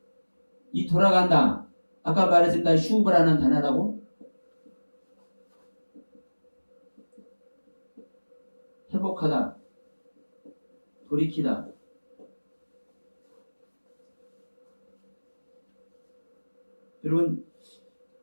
이 돌아간다. 아까 말했습니다. 슈브라는 단어라고. 회복하다. 돌이키다. 여러분,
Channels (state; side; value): inverted; both; correlation -1.00